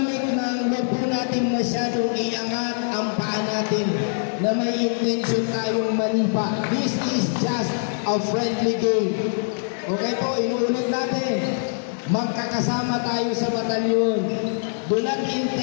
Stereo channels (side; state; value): right; silent; digital silence